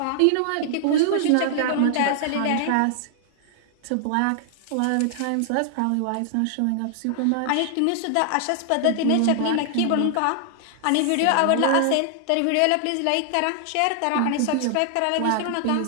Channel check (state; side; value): different; both; correlation 0.00